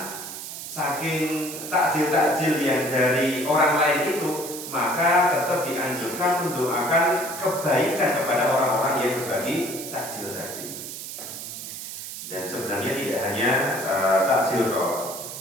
saking takjil-takjil yang dari orang lain itu, maka tetap dianjurkan mendoakan kebaikan kepada orang-orang yang berbagi takjil tadi. Dan sebenarnya tidak hanya takjil kok.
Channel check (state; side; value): noise; right; hiss, 9 dB below the sound